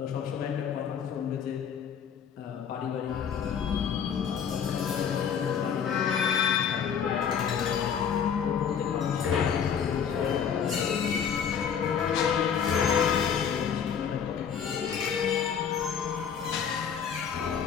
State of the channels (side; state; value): right; quieter; 7.5 dB